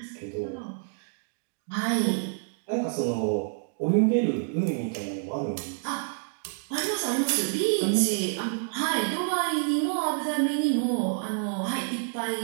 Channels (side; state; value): left; silent; 59 dB below the other